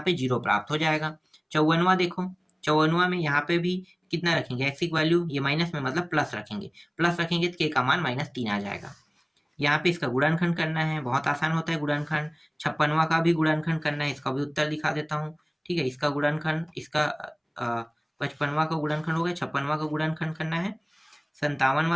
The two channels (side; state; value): both; identical; correlation 1.00